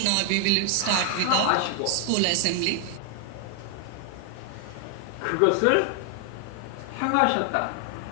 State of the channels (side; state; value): both; different; correlation 0.00